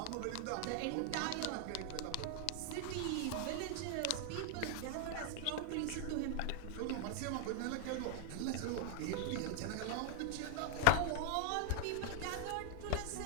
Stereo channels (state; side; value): different; both; correlation 0.01